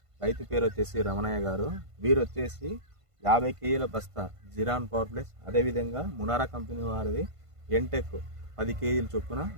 రైతు పేరు వచ్చేసి రమణయ్య గారు. వీరు వచ్చేసి 50 కేజీల బస్తా జిరాన్ పవర్ ప్లస్, అదేవిధంగా మునారా కంపెనీ వారిది ఎంటెక్ 10 కేజీల చొప్పున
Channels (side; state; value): left; late; 1.5 ms